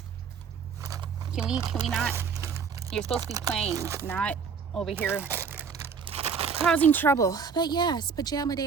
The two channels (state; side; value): quieter; left; 6.0 dB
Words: can we not? You're supposed to be playing, not over here causing trouble. But yes, pajama